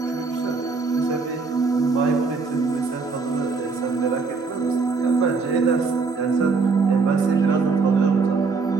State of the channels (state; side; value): quieter; left; 4.4 dB